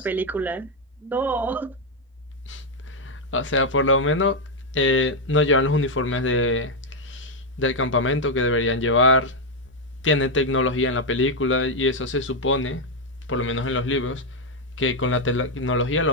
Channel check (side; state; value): both; normal; correlation 0.02